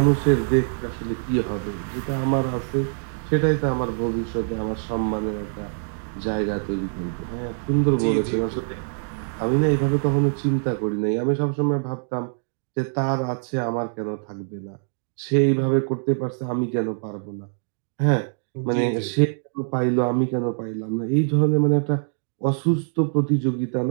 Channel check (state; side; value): silent; left; digital silence